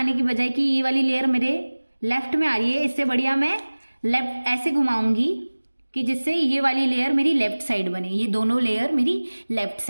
की बजाय कि ये वाली लेयर मेरे लेफ्ट में आ रही है, इससे बढ़िया मैं लेफ्ट ऐसे घुमाऊंगी कि जिससे ये वाली लेयर मेरी लेफ्ट साइड बने, ये दोनों लेयर मेरी लेफ्ट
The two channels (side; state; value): both; inverted; correlation -1.00